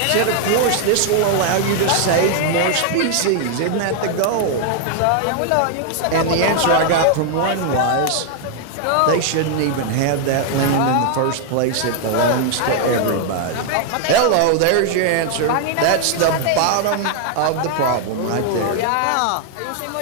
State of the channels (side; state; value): both; different; correlation 0.00